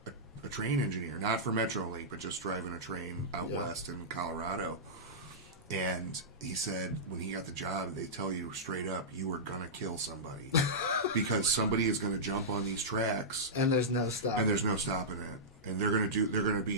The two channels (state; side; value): normal; both; correlation -0.15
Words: train engineer, not for Metrolink, but just driving a train out west in Colorado. And he said when he got the job, they tell you straight up, you are going to kill somebody. Because somebody is going to jump on these tracks. And there's no stopping. And they're going to